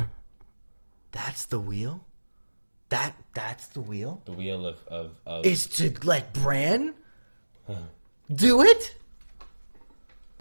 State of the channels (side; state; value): both; inverted; correlation -1.00